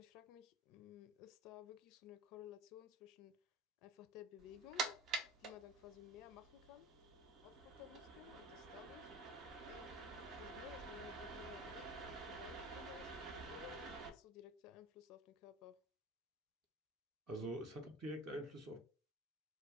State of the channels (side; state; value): both; normal; correlation 0.37